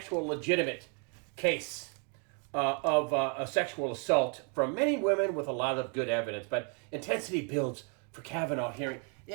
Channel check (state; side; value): quieter; left; 38.7 dB